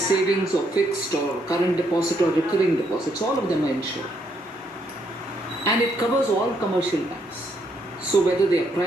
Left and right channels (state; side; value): normal; both; correlation 0.74